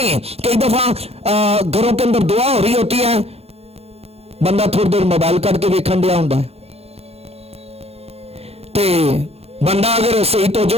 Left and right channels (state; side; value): late; left; 0.29 ms